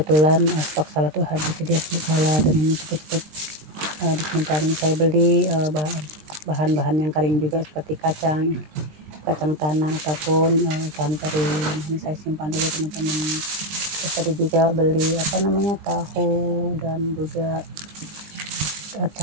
stok salad tuh habis, jadi aku salad dan ini cepet-cepet disimpan. Ini saya beli bahan-bahan yang kering juga seperti kacang tanah ataupun ikan teri. Nah, ini saya simpan dulu teman-teman. Terus tadi juga beli tahu dan juga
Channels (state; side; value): late; left; 20 ms